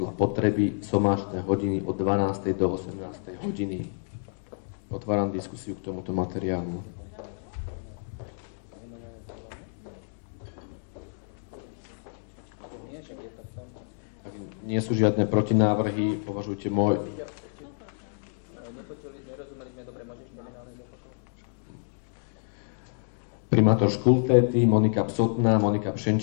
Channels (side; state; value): right; silent; 59 dB below the other